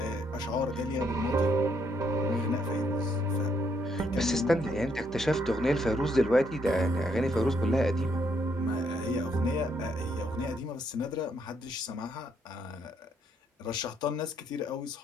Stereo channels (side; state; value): both; normal; correlation 0.73